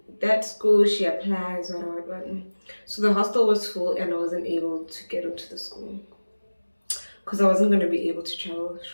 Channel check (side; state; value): both; inverted; correlation -1.00